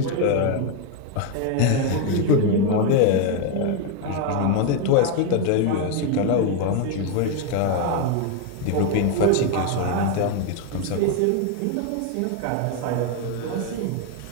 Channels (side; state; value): both; different; correlation 0.01